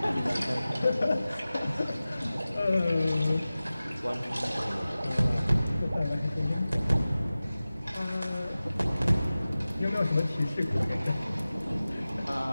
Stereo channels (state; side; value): inverted; both; correlation -0.97